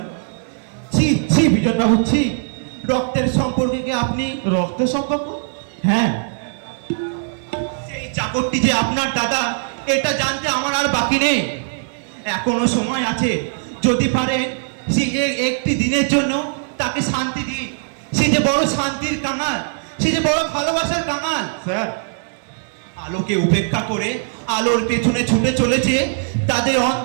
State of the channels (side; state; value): left; silent; 61 dB below the other